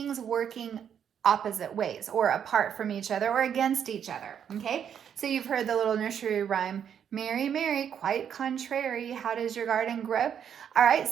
working opposite ways or apart from each other or against each other. Okay, so you've heard the little nursery rhyme, Mary, Mary, quite contrary, how does your garden grow? All right,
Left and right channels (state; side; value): quieter; left; 8.5 dB